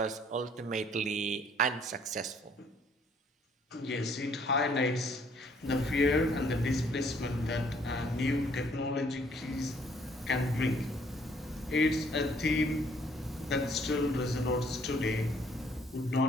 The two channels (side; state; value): both; normal; correlation 0.63